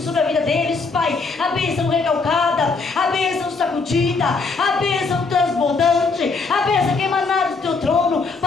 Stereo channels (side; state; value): right; quieter; 4.2 dB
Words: sobre a vida deles, Pai. A bênção recalcada, a bênção sacudida, a bênção transbordante, a bênção que emanada do teu trono,